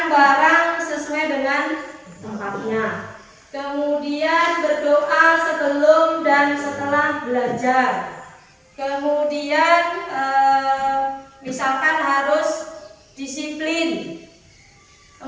barang sesuai dengan tempatnya, kemudian berdoa sebelum dan setelah belajar, kemudian misalkan harus disiplin,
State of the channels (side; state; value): both; identical; correlation 1.00